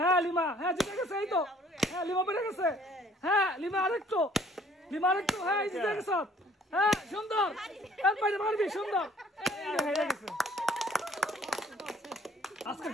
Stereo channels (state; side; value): normal; both; correlation 0.58